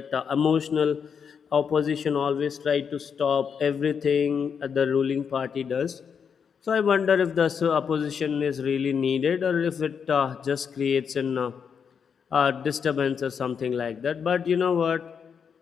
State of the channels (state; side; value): quieter; right; 6.8 dB